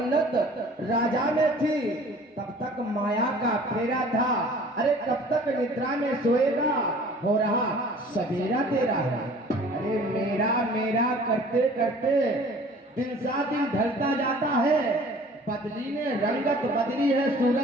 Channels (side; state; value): both; normal; correlation 0.49